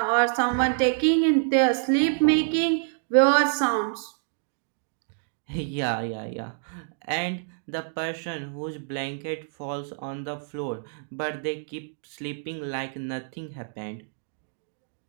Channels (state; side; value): silent; left; digital silence